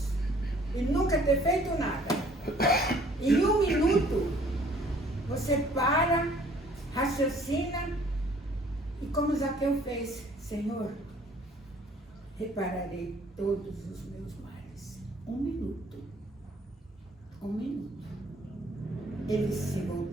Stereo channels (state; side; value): normal; both; correlation 0.57